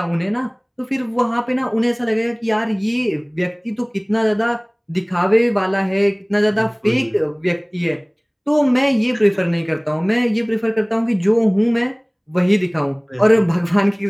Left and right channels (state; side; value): identical; both; correlation 1.00